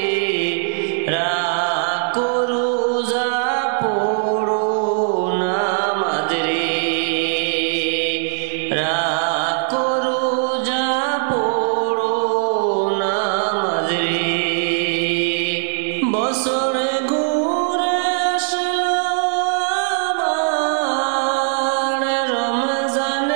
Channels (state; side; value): silent; left; digital silence